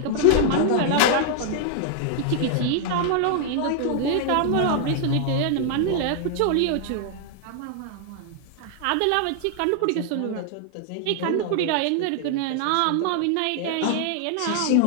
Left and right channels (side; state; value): both; different; correlation 0.00